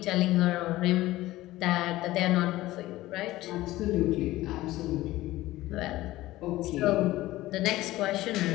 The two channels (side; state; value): right; quieter; 16.9 dB